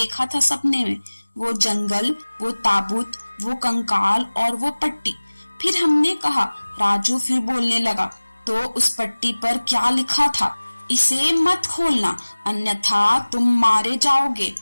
था सपने में। वो जंगल, वो ताबूत, वो कंकाल और वो पट्टी। फिर हमने कहा, राजू फिर बोलने लगा, तो उस पट्टी पर क्या लिखा था? इसे मत खोलना, अन्यथा तुम मारे जाओगे।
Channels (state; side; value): inverted; both; correlation -1.00